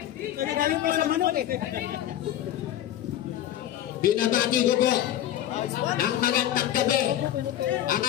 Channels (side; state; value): right; quieter; 12.0 dB